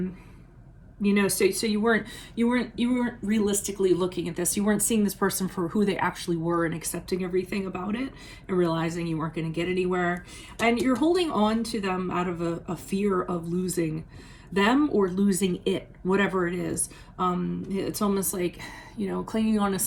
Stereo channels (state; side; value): identical; both; correlation 1.00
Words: know, so you weren't realistically looking at this. You weren't seeing this person for who they actually were and accepting everything about it, and realizing you weren't going to get anywhere. And you're holding on to them out of a fear of losing them or losing it, whatever it is. It's almost like, you know, clinging on to